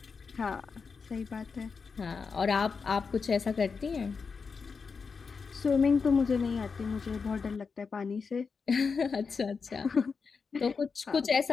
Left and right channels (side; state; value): right; quieter; 5.2 dB